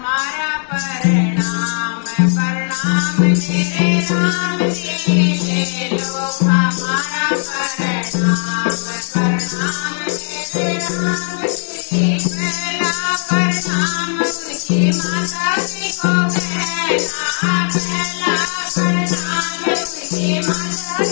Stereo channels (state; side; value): silent; right; digital silence